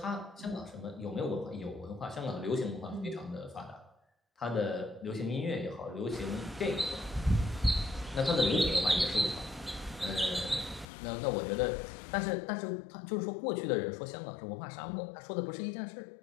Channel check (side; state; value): right; drops out; at 10.9 s